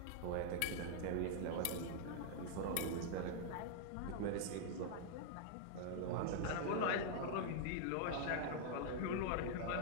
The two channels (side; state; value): both; different; correlation -0.01